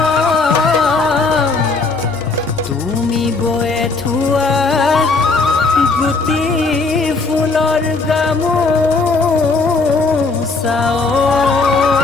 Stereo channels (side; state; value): right; quieter; 3.9 dB